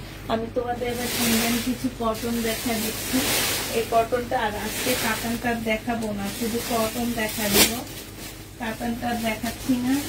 আমি তোমাদের এবার ইন্ডিয়ান কিছু কটন দেখা দিচ্ছি। এই কটনটা, আর আজকে কাতানটা দেখাবো না, শুধু কটন দেখা দিব। কাতানটা দেখাচ্ছি না,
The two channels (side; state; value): both; identical; correlation 1.00